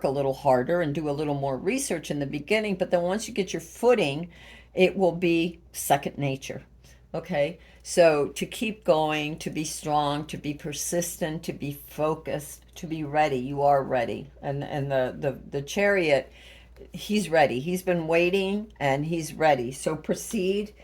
a little harder and do a little more research in the beginning, but then once you get your footing, it will be second nature. Okay? So to keep going, to be strong, to be persistent, to be focused, to be ready. You are ready. And the chariot, he's ready. He's been waiting and he's ready. So proceed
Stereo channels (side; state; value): both; identical; correlation 1.00